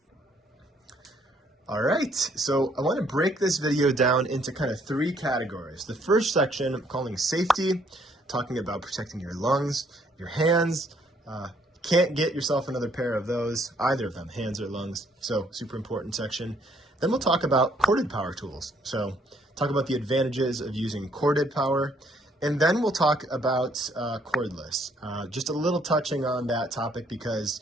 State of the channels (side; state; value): both; normal; correlation 0.66